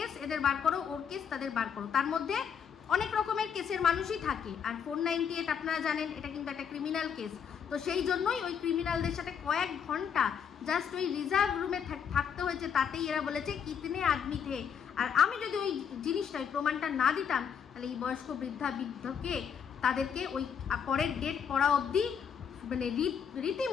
এদের বার করো, ওর কেস তাদের বার করো, তার মধ্যে অনেক রকমের কেসের মানুষই থাকে। আর 498 আপনারা জানেন এটা কিন্তু একটা ক্রিমিনাল কেস, তো সেই জন্যই ওই ক্রিমিনালদের সাথে কয়েক ঘন্টা জাস্ট ওই রিজার্ভ রুমে থাকতে হয়েছে, তাতেই এরা বলেছে কিতনে আদমি থে। আর আমি যদি ওই জিনিসটা ওই প্রমাণটা না দিতাম, তাহলে এই বয়স্ক বৃদ্ধকে তাদেরকে ওই পরের ডেট পড়া অবধি মানে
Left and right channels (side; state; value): right; quieter; 7.5 dB